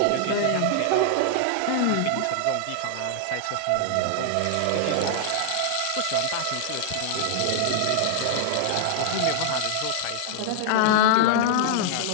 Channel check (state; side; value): different; both; correlation -0.01